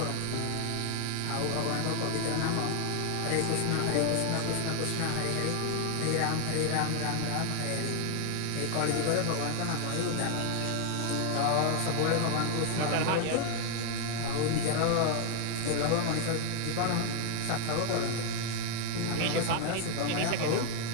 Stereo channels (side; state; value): both; different; correlation 0.00